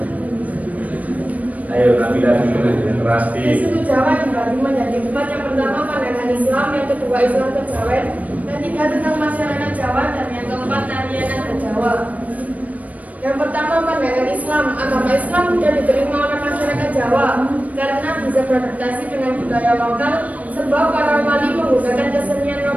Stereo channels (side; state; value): left; late; 0.071 ms